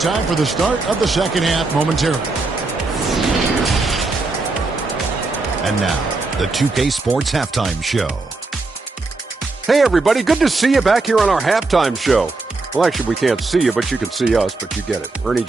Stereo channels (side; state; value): left; quieter; 3.5 dB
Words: for the start of the second half momentarily. And now, the 2K Sports Halftime Show. Hey, everybody. Good to see you back here on our halftime show. Well, actually, we can't see you, but you can see us, but you get it. Ernie